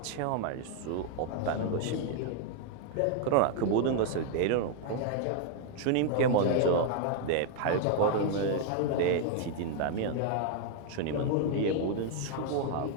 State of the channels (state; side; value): different; both; correlation 0.00